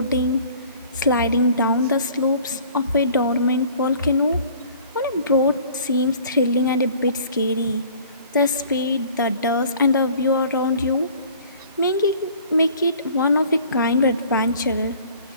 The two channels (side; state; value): both; inverted; correlation -0.50